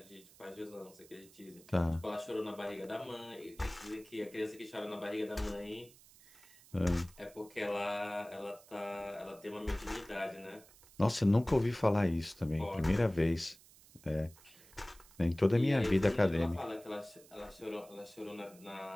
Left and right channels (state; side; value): noise; right; hiss, 24 dB below the sound